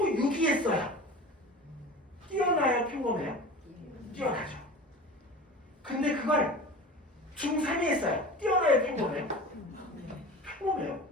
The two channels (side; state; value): both; normal; correlation 0.35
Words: 했어요. 뛰어나요? 평범해요? 뛰어나죠. 근데 그걸 중3이 했어요. 뛰어나요? 평범해요? 평범해요.